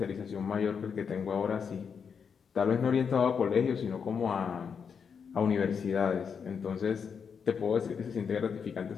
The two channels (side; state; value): right; quieter; 6.5 dB